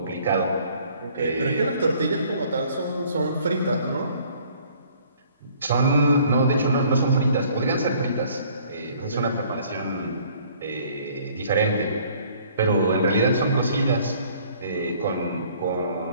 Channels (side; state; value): both; inverted; correlation -0.57